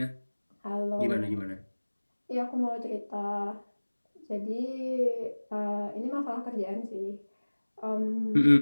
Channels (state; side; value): inverted; both; correlation -1.00